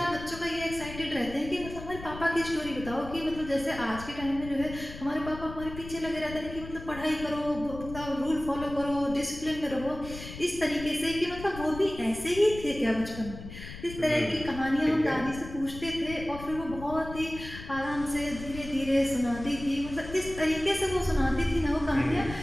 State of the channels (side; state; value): left; noise; rumble, 12 dB below the sound